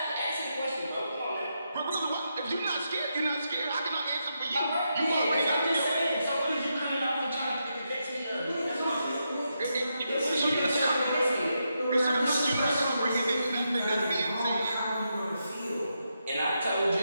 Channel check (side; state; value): both; inverted; correlation -0.84